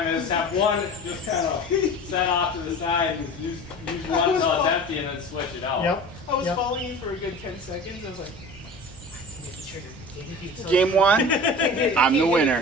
is have one just kind of set off to the side and use one until it's empty and then switch it out. Yep. I was Yep. following you for a good 10 seconds. I was like, Hit the trigger. Can't hit the Game one, Can't hit it, I'm the can't hit it, winner.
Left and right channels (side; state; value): both; normal; correlation 0.36